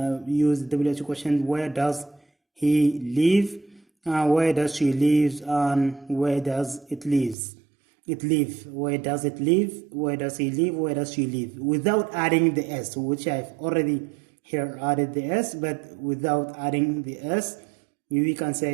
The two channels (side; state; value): left; drops out; at 7.4 s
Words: use the WH question: where does he live? Where does she live? And where does it live? Where does it live? Where does he live? Where does she live? Without adding the s, which I've already here added the s, but without adding the s, we can